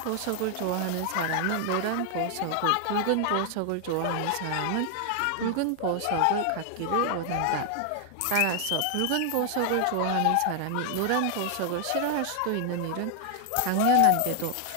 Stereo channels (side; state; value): both; different; correlation 0.00